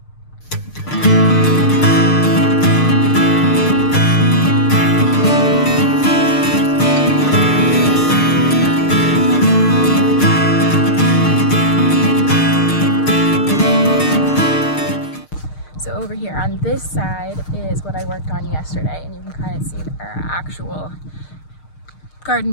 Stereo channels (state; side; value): late; right; 6.5 ms